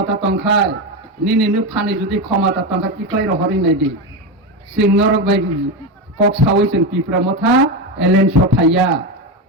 तंखाय निनिनो फानि जुदि क्षमता तंखा किक्लाय रहरि नायदि सिं नरक बाय कक सावै जों तिप्रमा था एलेन सफाया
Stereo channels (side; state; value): both; normal; correlation 0.14